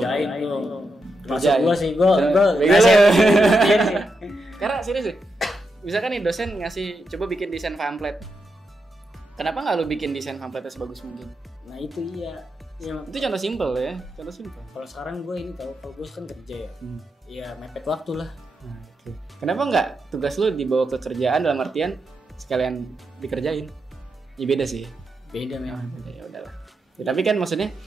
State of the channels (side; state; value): both; normal; correlation 0.85